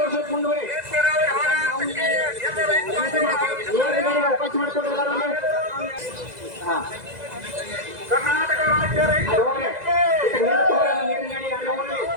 ಮುಂದುವರಿ ಅವಕಾಶ ಮಾಡಿಕೊಡ್ತಾರೆ. ಕರ್ನಾಟಕ ರಾಜ್ಯ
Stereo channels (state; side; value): late; left; 2.0 ms